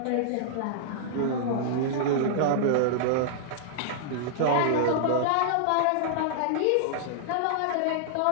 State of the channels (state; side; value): different; both; correlation -0.01